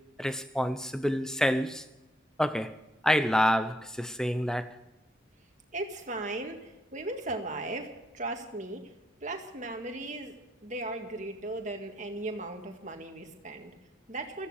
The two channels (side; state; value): both; normal; correlation 0.76